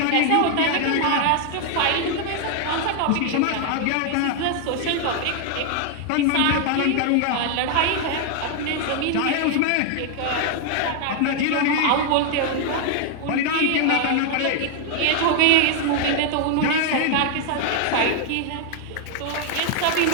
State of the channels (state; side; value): different; both; correlation 0.00